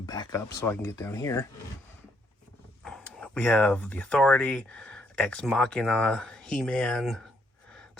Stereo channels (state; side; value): normal; both; correlation 0.72